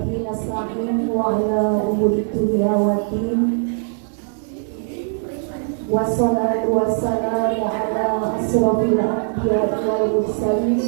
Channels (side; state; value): left; silent; 64 dB below the other